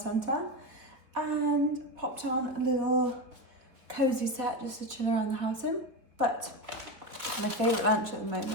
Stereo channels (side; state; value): left; late; 4.3 ms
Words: and popped on a little cozy set just to chill around the house in. But my favourite lunch at the